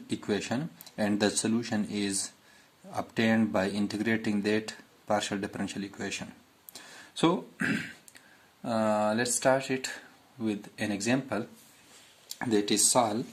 equation and the solution is obtained by integrating that partial differential equation. So let's start it with an example that is solve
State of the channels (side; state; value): both; identical; correlation 1.00